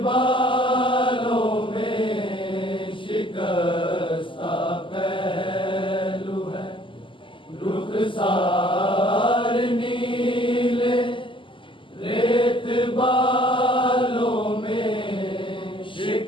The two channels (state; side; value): late; right; 0.25 ms